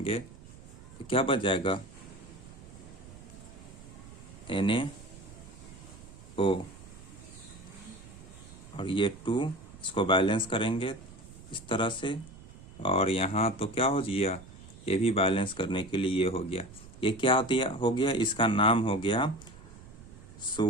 तो क्या बच जाएगा, NaO। और ये 2 इसको बैलेंस करेंगे इस तरह से, और यहाँ तो क्या हो गया, ये भी बैलेंस करने के लिए ये हो गया। ये क्या हो गया, इसका नाम हो गया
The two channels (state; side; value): noise; right; rumble, 18 dB below the sound